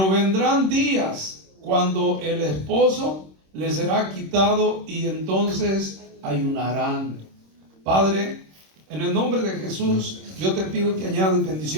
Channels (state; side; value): late; left; 26 ms